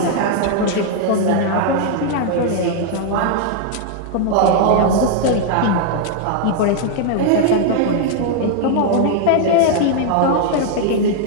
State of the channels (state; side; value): different; both; correlation 0.00